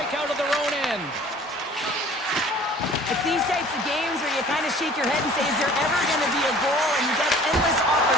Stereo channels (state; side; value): normal; both; correlation 0.49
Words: out of their own end. It's these types of games where you kind of shake your head and say, is there ever going to be a goal? And you get endless